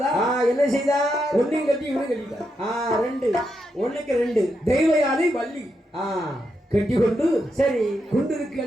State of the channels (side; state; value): both; normal; correlation 0.83